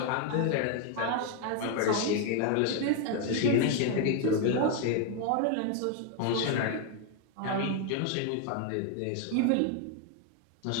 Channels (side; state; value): both; different; correlation 0.01